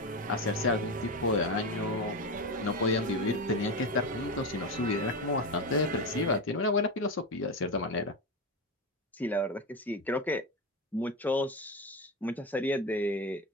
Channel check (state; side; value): normal; both; correlation 0.18